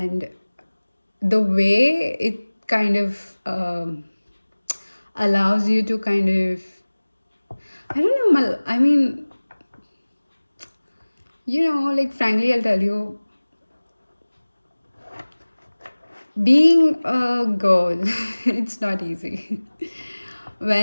the way it kind of allows you to kind of, I don't know, I mean, like frankly, I'll tell you, being a girl, it's not easy.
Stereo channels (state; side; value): inverted; both; correlation -1.00